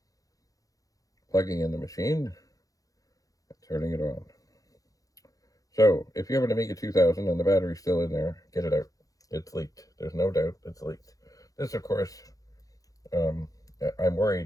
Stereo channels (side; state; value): right; late; 0.17 ms